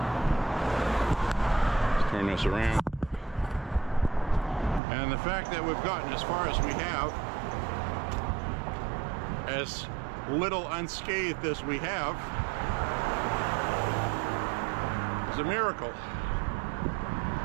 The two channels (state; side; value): drops out; left; at 4.8 s